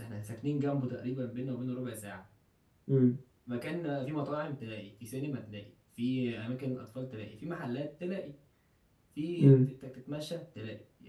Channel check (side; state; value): both; identical; correlation 1.00